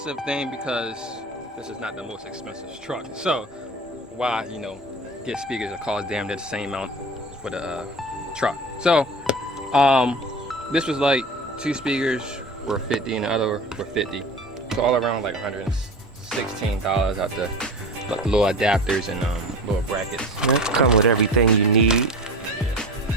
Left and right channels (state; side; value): normal; both; correlation 0.33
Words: thing because this is not the most expensive truck. So why, get speakers that cost damn near the same amount for the truck. So this was like 2 speakers were 50 and the other were 50. So all around like $116 out the little adapters and little brackets. That come with everything you need.